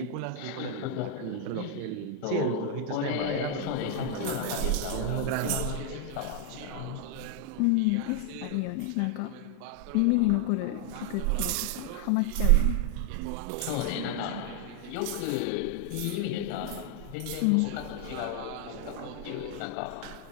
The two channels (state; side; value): different; both; correlation 0.00